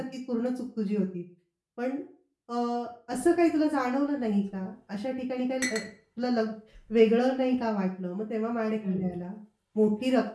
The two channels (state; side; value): identical; both; correlation 1.00